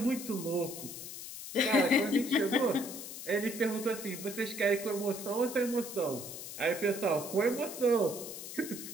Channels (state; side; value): noise; left; hiss, 10 dB below the sound